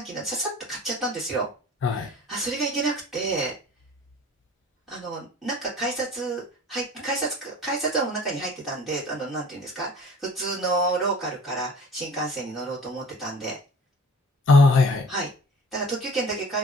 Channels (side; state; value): both; normal; correlation 0.45